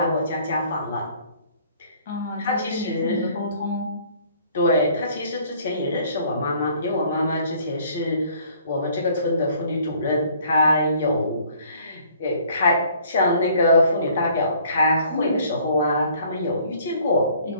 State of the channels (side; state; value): both; inverted; correlation -0.58